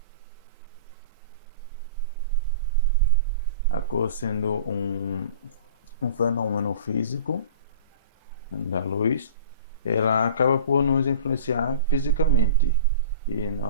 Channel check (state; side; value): inverted; both; correlation -0.38